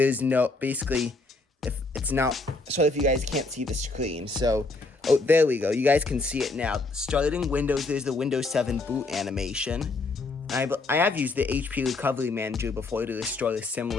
no, basically, if it's not, sorry if you guys can't see the screen. So, oh, there we go. You guys can see it now. Starting Windows, there's the Windows 7 boot animation. I have used the HP Recovery Manager before to restore a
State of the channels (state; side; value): quieter; right; 3.4 dB